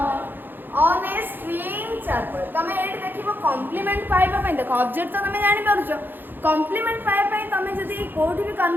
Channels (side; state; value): left; late; 0.094 ms